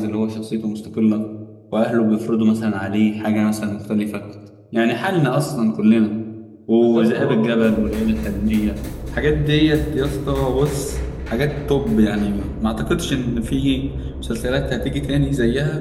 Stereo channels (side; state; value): both; identical; correlation 1.00